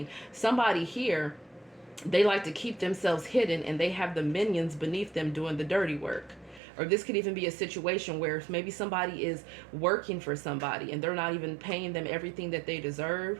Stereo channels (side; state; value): left; drops out; at 6.6 s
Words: Somebody here, they like to keep themselves hidden and they have the minions beneath them doing the dirty work. Or this could even be a situation where maybe somebody is working for somebody and they're not even paying them everything that they deserve.